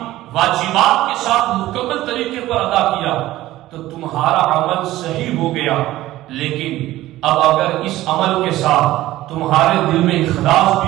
واجبات کے ساتھ مکمل طریقے پر ادا کیا تو تمہارا عمل صحیح ہو گیا، لیکن اب اگر اس عمل کے ساتھ تمہارے دل میں اخلاص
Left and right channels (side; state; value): left; quieter; 15.8 dB